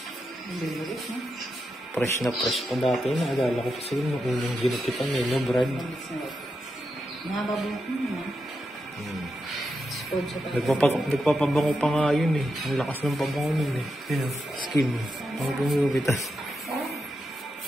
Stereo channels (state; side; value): normal; both; correlation 0.86